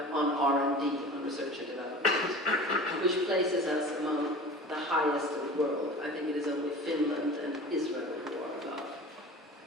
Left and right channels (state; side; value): normal; both; correlation 0.38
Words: R&D, on research and development, which places us among the highest in the world. I think it is only Finland and Israel who are above.